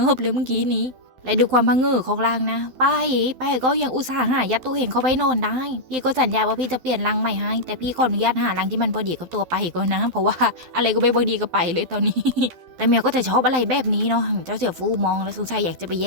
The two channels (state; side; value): late; left; 12 ms